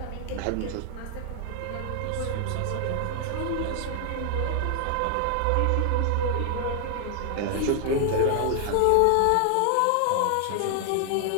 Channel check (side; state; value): both; different; correlation 0.00